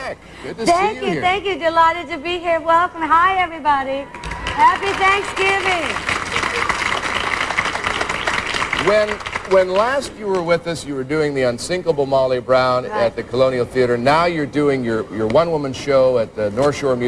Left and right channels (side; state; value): both; identical; correlation 1.00